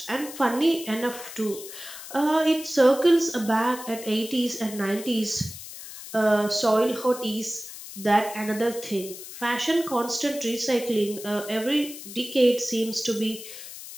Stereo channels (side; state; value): left; noise; hiss, 13 dB below the sound